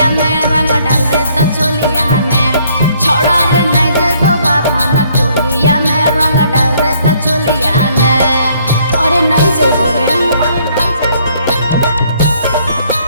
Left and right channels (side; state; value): both; inverted; correlation -0.65